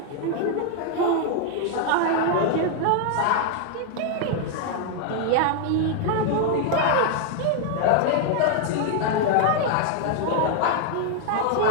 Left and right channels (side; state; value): both; different; correlation 0.00